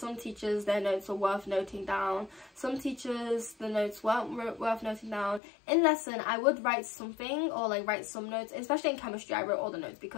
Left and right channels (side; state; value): right; drops out; at 5.4 s